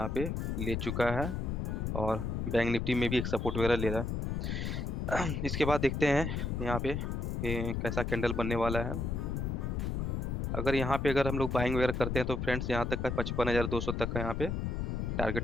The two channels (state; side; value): noise; left; rumble, 1 dB below the sound